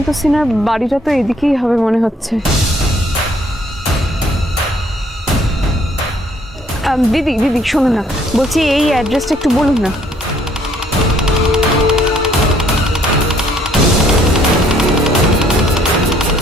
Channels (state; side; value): normal; both; correlation 0.63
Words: সিনহার বাড়িটা তো এদিকেই হবে মনে হচ্ছে। দিদি দিদি শোনো না, বলছি এই অ্যাড্রেসটা একটু বলুন না।